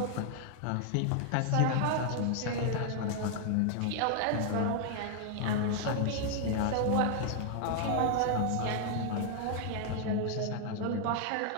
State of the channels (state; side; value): different; both; correlation 0.00